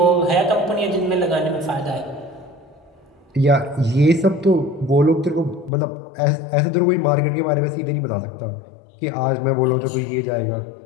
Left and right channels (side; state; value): right; drops out; at 5.7 s